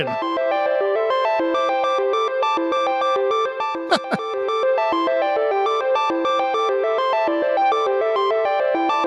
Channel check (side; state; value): both; identical; correlation 1.00